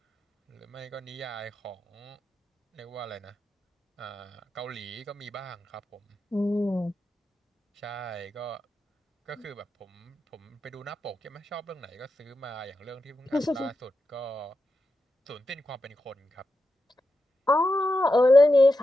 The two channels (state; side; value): normal; both; correlation 0.88